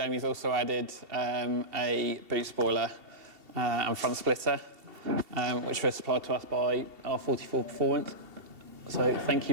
also added a boot spoiler and front splitter, which were supplied to us by R44 Performance. So thank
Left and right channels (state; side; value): late; left; 2.7 ms